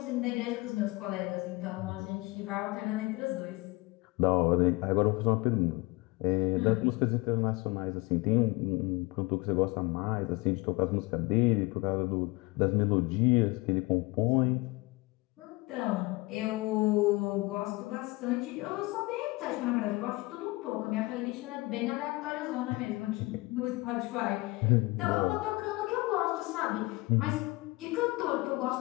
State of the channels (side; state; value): right; quieter; 23.2 dB